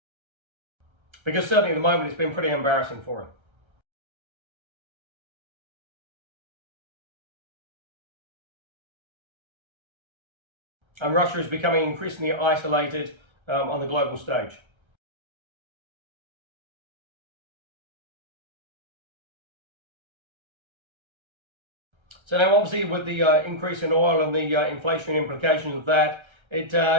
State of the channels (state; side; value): late; left; 1.3 ms